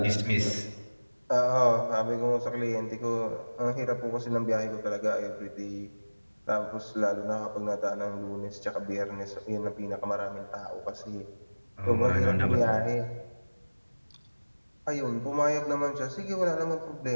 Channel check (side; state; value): both; inverted; correlation -1.00